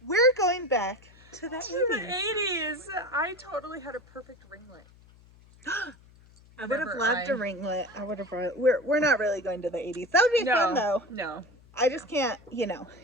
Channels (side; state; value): left; noise; hum, 26 dB below the sound